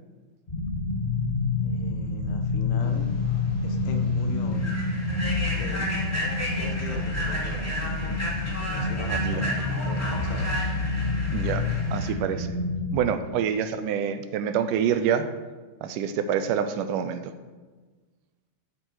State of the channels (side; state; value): both; normal; correlation -0.11